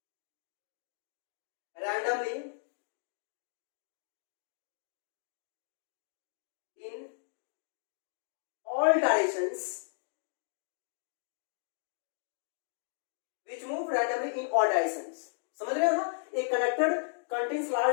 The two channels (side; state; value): right; silent; digital silence